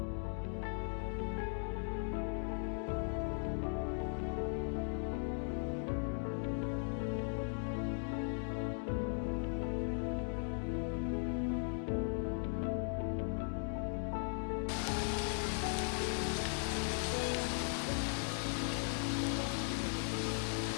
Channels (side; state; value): right; silent; 52 dB below the other